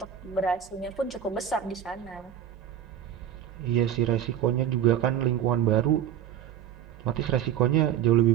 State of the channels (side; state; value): left; quieter; 9.9 dB